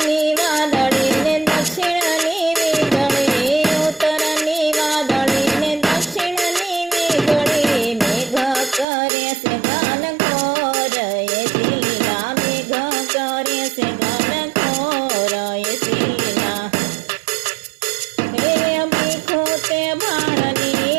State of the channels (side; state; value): left; drops out; at 8.8 s